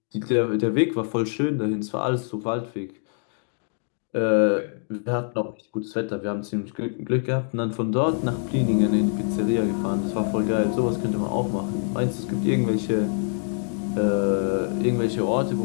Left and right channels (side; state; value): right; silent; 57 dB below the other